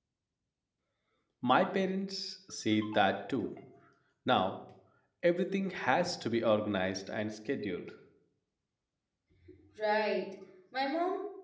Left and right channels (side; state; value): both; identical; correlation 1.00